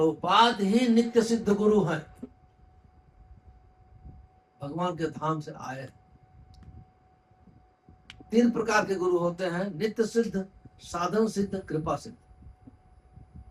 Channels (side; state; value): both; identical; correlation 1.00